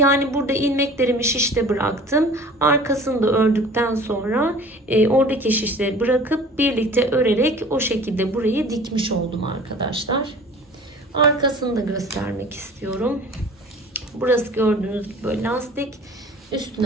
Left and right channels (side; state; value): both; normal; correlation 0.45